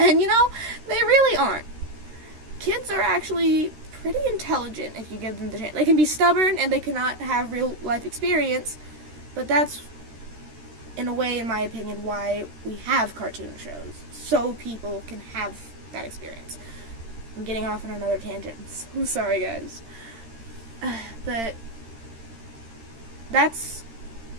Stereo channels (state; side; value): late; left; 13 ms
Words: they really aren't. Kids are actually pretty intelligent if you give them the chance. They can be stubborn and they cannot have real life experience, but that's, in a way, in my opinion, why we have cartoon shows, so people can have that experience. I'm getting off on another tangent. I'm sorry, guys. But that's